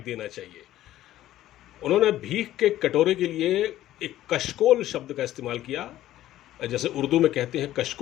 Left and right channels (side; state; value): right; quieter; 13.8 dB